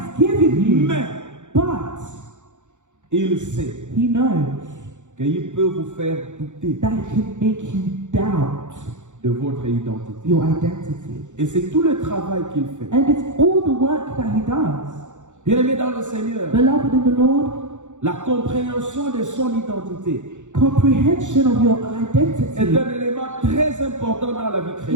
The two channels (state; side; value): late; left; 0.85 ms